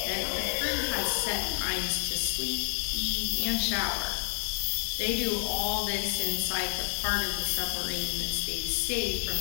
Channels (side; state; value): right; silent; 58 dB below the other